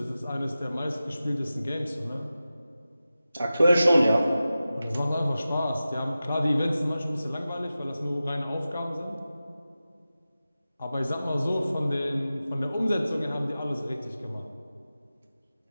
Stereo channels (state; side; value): inverted; both; correlation -0.94